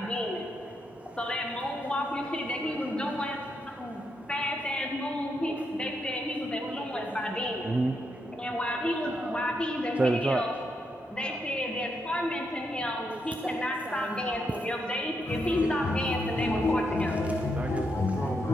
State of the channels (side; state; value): both; normal; correlation 0.80